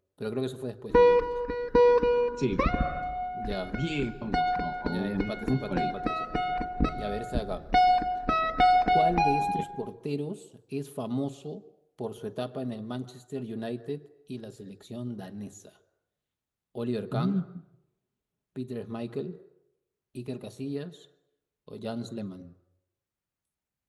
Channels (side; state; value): both; identical; correlation 1.00